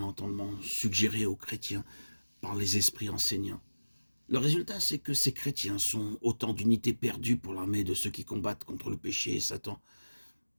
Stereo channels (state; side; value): inverted; both; correlation -1.00